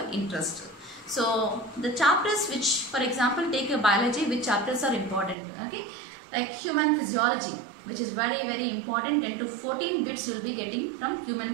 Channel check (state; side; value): drops out; left; at 5.4 s